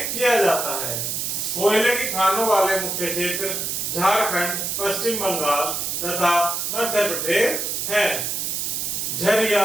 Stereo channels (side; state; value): right; noise; hiss, 2 dB below the sound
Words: किया जाता है। कोयले की खानों वाले मुख्य क्षेत्र झारखंड, पश्चिम बंगाल तथा मध्य प्रदेश हैं। झरिया,